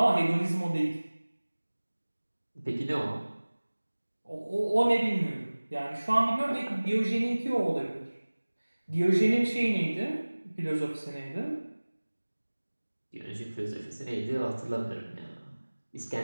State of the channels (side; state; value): both; inverted; correlation -1.00